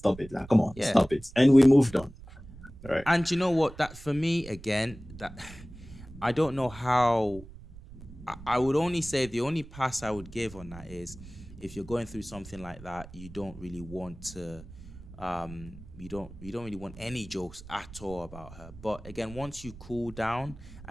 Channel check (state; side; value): noise; right; rumble, 16 dB below the sound